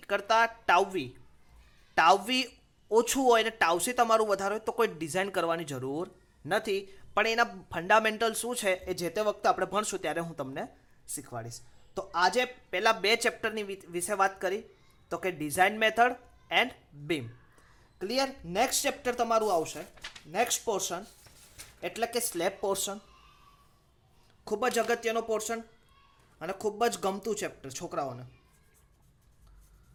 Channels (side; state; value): both; identical; correlation 1.00